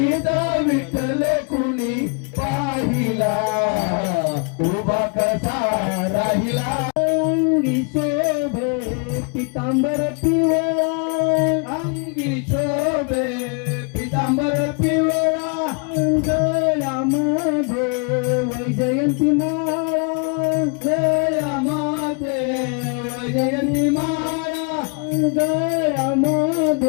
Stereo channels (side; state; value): right; quieter; 34.8 dB